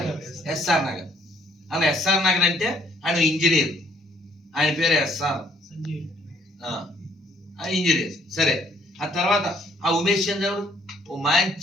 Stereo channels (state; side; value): normal; both; correlation 0.65